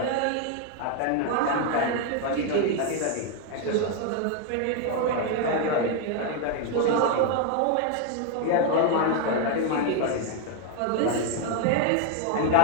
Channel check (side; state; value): both; different; correlation 0.00